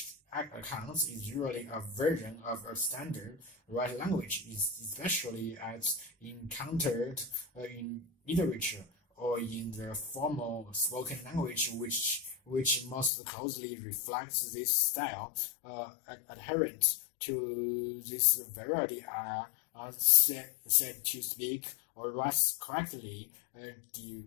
accounts is usually a version of a standard right language, especially as encountered in literature or in the formal spoken language, which most closely reflects this style. Adherent to this variety are said to speak, or write correctly,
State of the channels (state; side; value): drops out; right; at 13.1 s